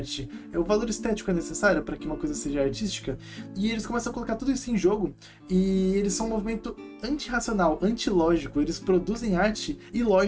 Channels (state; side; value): identical; both; correlation 1.00